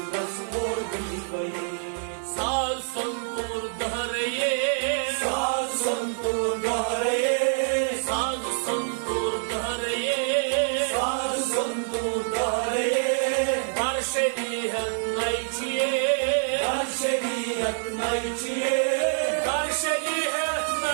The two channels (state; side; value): silent; left; 61 dB below the other